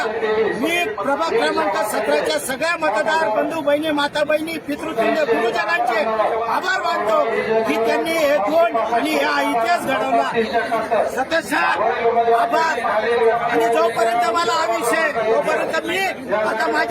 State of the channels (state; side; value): identical; both; correlation 1.00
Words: मी प्रभाग क्रमांक 17च्या सगळ्या मतदार बंधू बहिणी, माता बहिणी, पितृतुल्य गुरुजनांचे आभार मानतो की त्यांनी हे दोन आणि हा इतिहास घडवला। सतत आभार। आणि जोपर्यंत मला हा विषय, तोपर्यंत मी आता